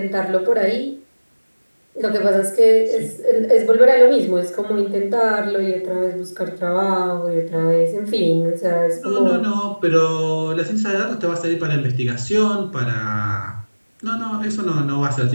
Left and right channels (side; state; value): both; inverted; correlation -1.00